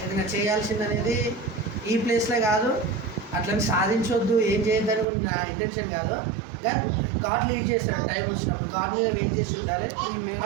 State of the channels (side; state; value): left; drops out; at 5.1 s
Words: ఏదైనా చేయాల్సింది అనేది ఈ ప్లేస్లో కాదు. అట్లని సాధించవద్దు ఏం చేయొద్దని కూడా నా ఇంటెన్షన్ కాదు. కానీ గాడ్ లీడ్ చేస్తాడు టైం వచ్చినప్పుడు. గాడ్ మీద వెయిట్ చేసి ఉండాలి.